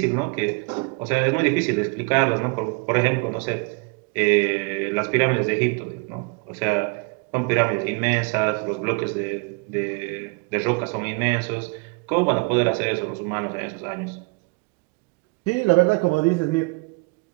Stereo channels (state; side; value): quieter; left; 31.3 dB